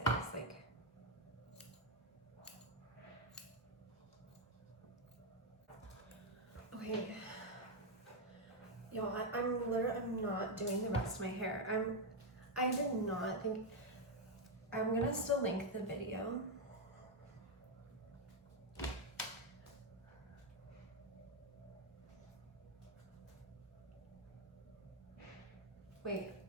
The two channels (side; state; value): both; normal; correlation 0.02